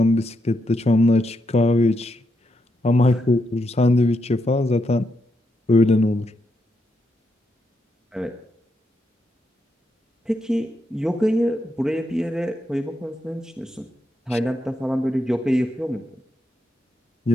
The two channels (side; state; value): both; normal; correlation 0.82